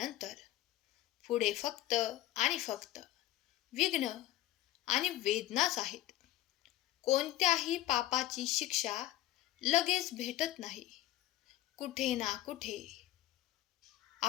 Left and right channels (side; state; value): right; quieter; 14.5 dB